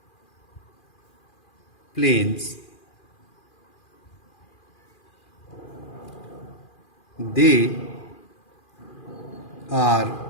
plains. They are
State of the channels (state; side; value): late; right; 2.4 ms